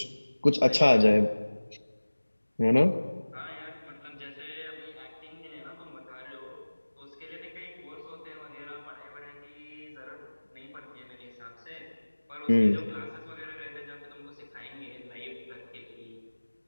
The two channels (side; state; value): both; inverted; correlation -1.00